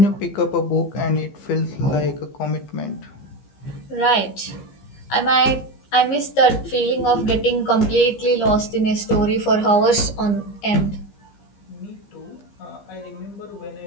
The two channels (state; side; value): late; right; 15 ms